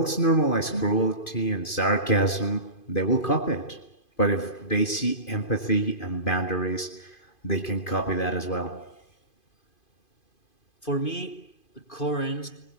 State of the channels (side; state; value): right; late; 2.5 ms